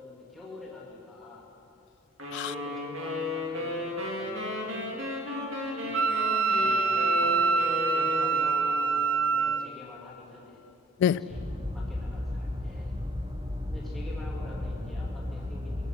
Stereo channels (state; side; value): normal; both; correlation 0.61